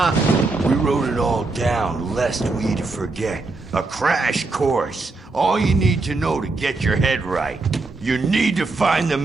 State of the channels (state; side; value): quieter; left; 3.5 dB